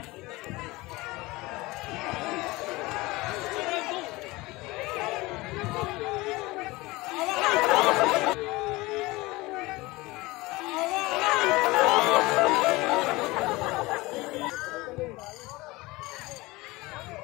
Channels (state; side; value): quieter; right; 21.4 dB